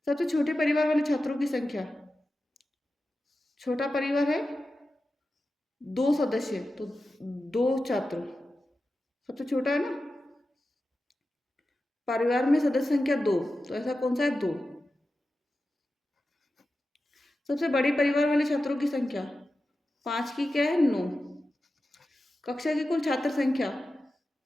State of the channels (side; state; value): both; normal; correlation 0.93